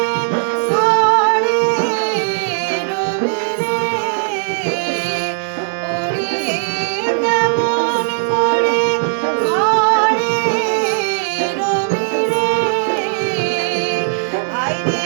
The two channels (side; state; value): left; silent; 64 dB below the other